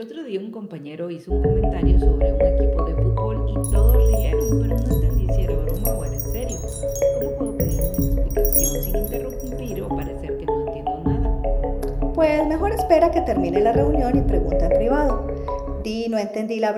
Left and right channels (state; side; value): identical; both; correlation 1.00